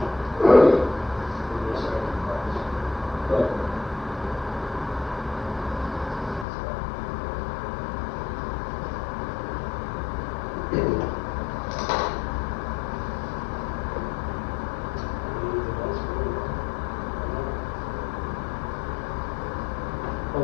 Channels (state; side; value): drops out; right; at 6.5 s